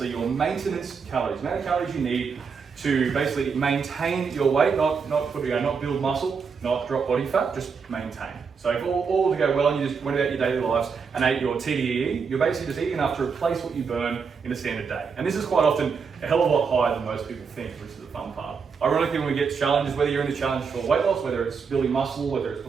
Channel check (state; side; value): quieter; left; 5.7 dB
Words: your maintenance calories, the amount of calories you need to basically maintain your weight, not build muscle, not drop body fat, just maintain. So if all to go well and you just went about your daily lives and ate your TDEE, you're basically just eating enough to replace what you burn in a standard day. And this is quite often a hell of a lot higher than most people think, which is the fun part. Ironically, when we get challenges, whether you're in the challenge for weight loss, whether it's building muscle, whether it's